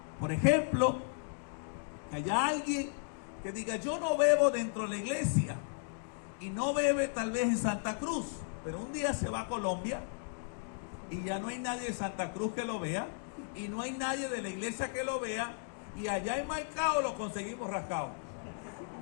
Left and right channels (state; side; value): silent; right; digital silence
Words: Por ejemplo, que haya alguien que diga, yo no bebo dentro de la iglesia, y no bebe tal vez en Santa Cruz, pero un día se va a Colombia y ya no hay nadie de Santa Cruz que lo vea, y no hay nadie de la iglesia que lo vea, y allá en Maicao lo conseguimos rascado.